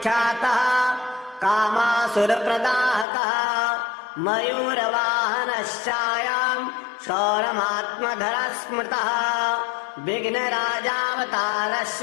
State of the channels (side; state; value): right; drops out; at 3.1 s